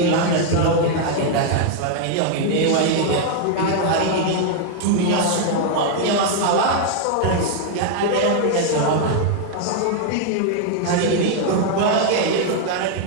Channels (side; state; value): both; different; correlation 0.00